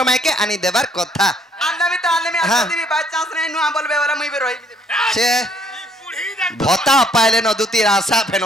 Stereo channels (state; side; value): normal; both; correlation 0.65